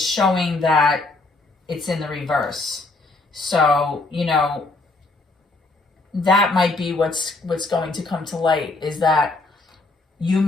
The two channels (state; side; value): quieter; right; 3.3 dB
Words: showing that it's in the reverse. So, that might be what's going to come to light, is that you